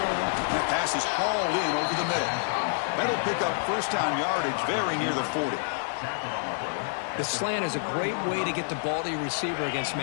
That pass is hauled in over the middle. That'll pick up 1st down yardage very near the 40. The slant is a great way to get the ball to your receiver against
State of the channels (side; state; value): right; silent; digital silence